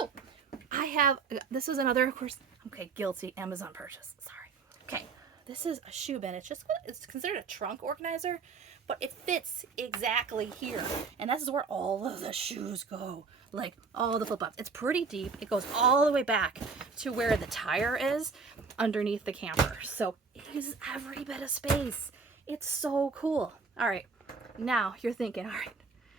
I have, this is another, of course, okay, guilty Amazon purchase. Sorry. Okay. This is a shoe bin. It's considered a trunk organizer, but it fits exactly here. And this is where all of the shoes go. Like all the flip-flops. It's pretty deep. It goes all the way back to where the tire is underneath the camper. So it uses every bit of space. It's so cool. All right. Now you're thinking, all right,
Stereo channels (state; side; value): quieter; left; 4.9 dB